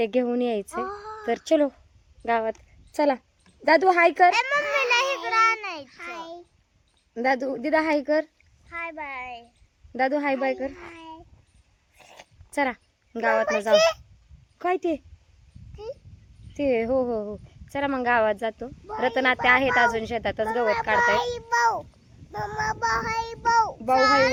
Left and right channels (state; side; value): identical; both; correlation 1.00